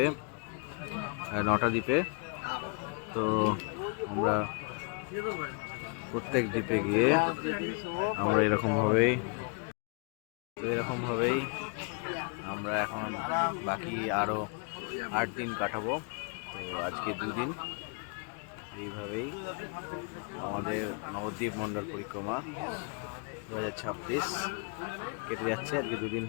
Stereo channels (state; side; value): quieter; right; 36.0 dB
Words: 9টা দ্বীপে। তো আমরা প্রত্যেক দ্বীপে গিয়ে আমরা এরকমভাবেই আমরা এখন বাকি আরও 8 দিন কাটাবো। তো আজকে 2 দিন এইভাবেই আমাদের নবদ্বীপ মণ্ডল পরিক্রমা 2026 কেটে যাচ্ছে। আজকে 2 দিন